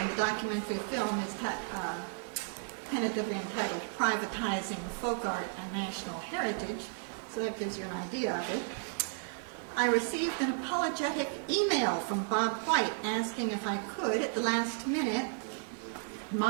the documentary film is tentatively entitled Privatizing Folk Art and National Heritage, so that gives you an idea of it. I received an apologetic email from Bob White asking if I could, at the last minute,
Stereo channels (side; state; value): left; silent; 55 dB below the other